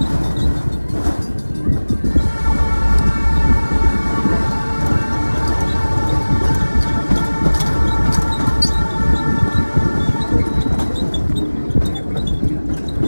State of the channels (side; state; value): both; inverted; correlation -1.00